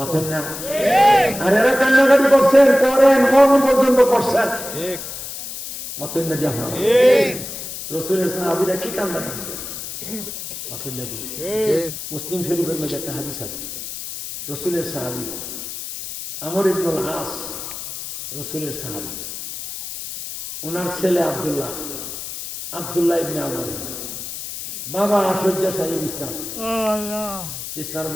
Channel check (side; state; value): left; noise; hiss, 9 dB below the sound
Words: আর এরা কান্নাকাটি করছেন করেন মরণ পর্যন্ত করছেন রসুলের সাহাবীরা কি কান্দাছে মুসলিম শরীফের মধ্যে একটা হাদিস আছে রসুলের সাহাবী আমর ইবনুল আস রসুলের সাহাবী ওনার ছেলে আব্দুল্লাহ ইবনে আমর বাবা শয্যাশায়ী বিছনার